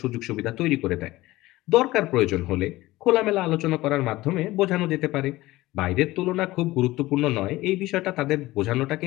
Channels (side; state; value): right; quieter; 18.1 dB